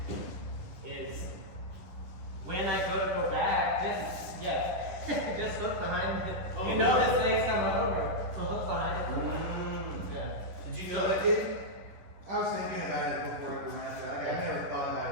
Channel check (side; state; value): left; late; 10 ms